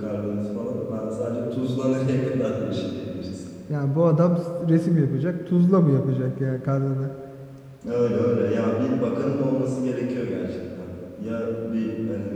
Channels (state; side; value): identical; both; correlation 1.00